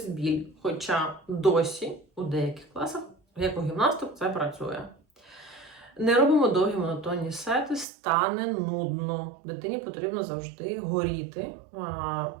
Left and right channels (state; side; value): drops out; left; at 7.9 s